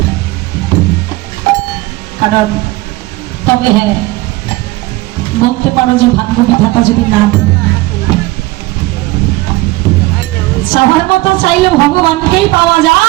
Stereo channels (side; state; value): left; quieter; 20.1 dB